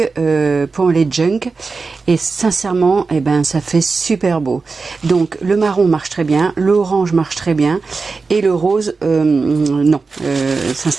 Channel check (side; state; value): left; quieter; 4.3 dB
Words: pour les junk et sincèrement, eh ben ça fait super beau. Donc le marron marche très bien, l'orange marche très bien et le rose non,